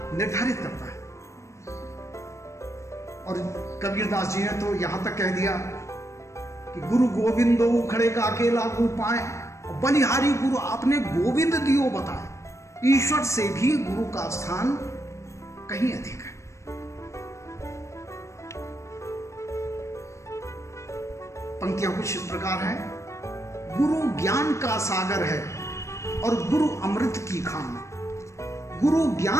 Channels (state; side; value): late; right; 0.14 ms